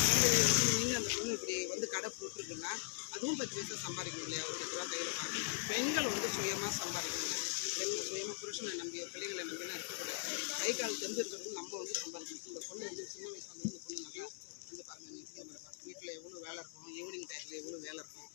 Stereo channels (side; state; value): right; silent; digital silence